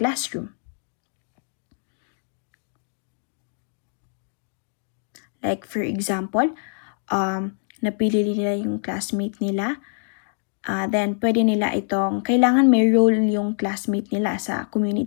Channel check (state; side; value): silent; right; digital silence